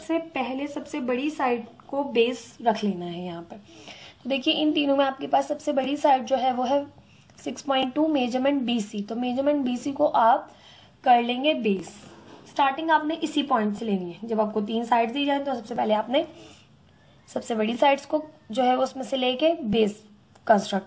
पहले सबसे बड़ी साइड को बेस रख लेना है यहाँ पर। तो देखिए इन तीनों में आपके पास सबसे बड़ी साइड जो है वो है 6.2 मेजरमेंट BC, तो मेजरमेंट BC को आप कर लेंगे बेस। स्टार्टिंग आपने इसी पॉइंट से लेनी है, जब आपको 3 साइड दी जाए तो सबसे पहले आपने सबसे बड़ी साइड्स को जो है उसमें से लेके बेस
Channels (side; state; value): both; identical; correlation 1.00